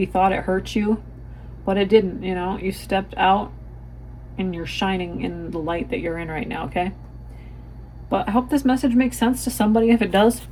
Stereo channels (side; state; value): both; identical; correlation 1.00